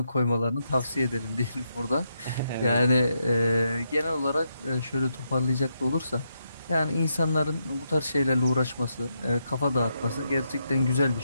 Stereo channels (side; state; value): both; inverted; correlation -0.82